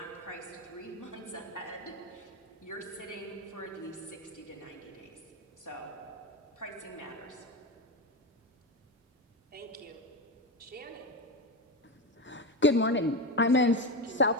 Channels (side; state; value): both; normal; correlation 0.17